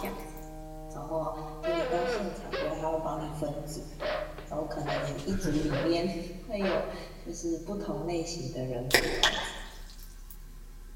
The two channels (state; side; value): identical; both; correlation 1.00